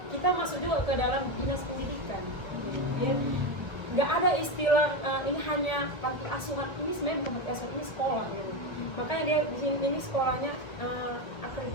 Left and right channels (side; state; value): right; late; 1.9 ms